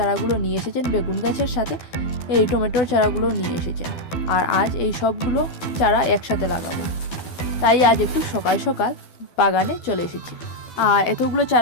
নিয়ে এসেছেন, বেগুন গাছের সাথে এই টমেটোর চারাগুলো নিয়ে এসেছেন। আর আজ এই সবগুলো চারা একসাথে লাগাবো, তাই আজ একটু সকাল সকাল বাগানে চলে এসেছি। আর এতগুলো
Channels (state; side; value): late; right; 12 ms